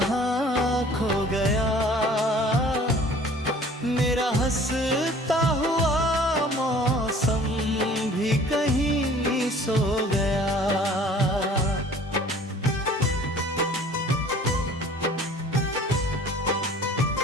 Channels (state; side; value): normal; both; correlation 0.50